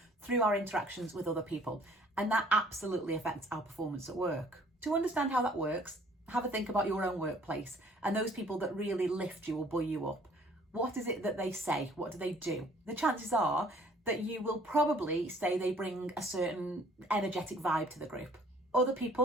through our interactions with other people, and that absolutely affects our performance at work. To understand how that works, have a think about your own workplace and those people that really lift you or buoy you up. What is it that they say? What do they do? The chances are that you will probably say they bring a certain energetic vibe to the group. Other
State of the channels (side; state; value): both; normal; correlation 0.57